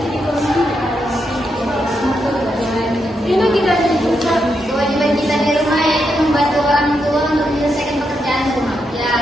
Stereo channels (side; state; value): both; normal; correlation 0.82